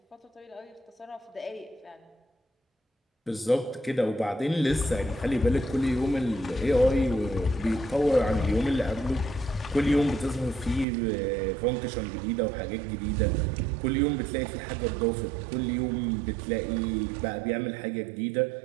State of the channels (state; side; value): drops out; left; at 10.9 s